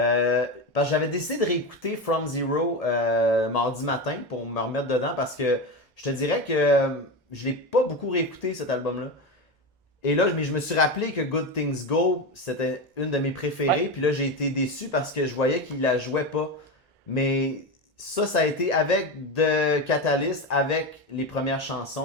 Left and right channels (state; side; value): normal; both; correlation 0.18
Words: que j'avais décidé de réécouter From Zero mardi matin pour me remettre dedans parce que je te dirais que je l'ai pas beaucoup réécouté cet album-là. Et là, je me suis rappelé que Good Things Go, c'était une de mes préférées. Ouais. Puis là, j'ai été déçu parce que je voyais qu'il la jouait pas. Mais ça a été avec The Catalyst, avec les premières